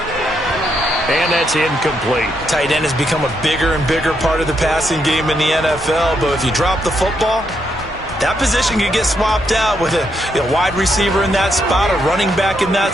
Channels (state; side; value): normal; both; correlation 0.78